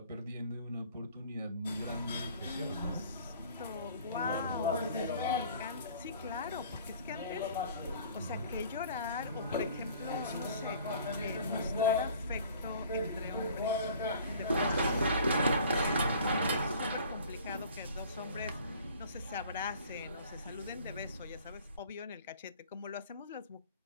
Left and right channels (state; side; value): inverted; both; correlation -0.50